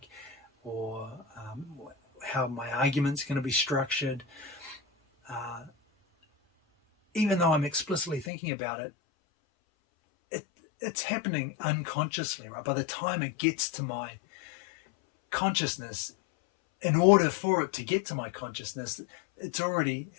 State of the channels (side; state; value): right; drops out; at 8.3 s